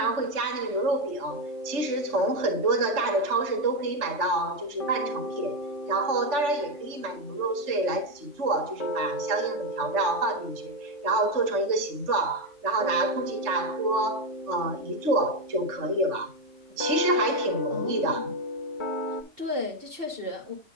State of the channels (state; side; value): late; left; 3.4 ms